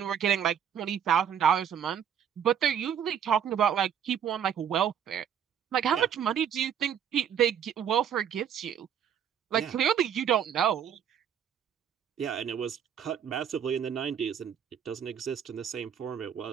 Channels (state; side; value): quieter; left; 8.7 dB